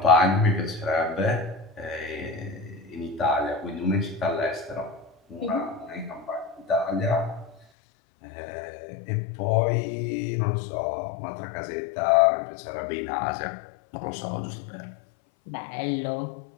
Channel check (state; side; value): drops out; right; at 7.7 s